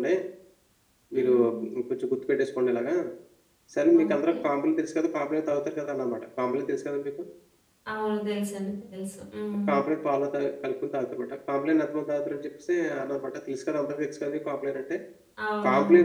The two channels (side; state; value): both; identical; correlation 1.00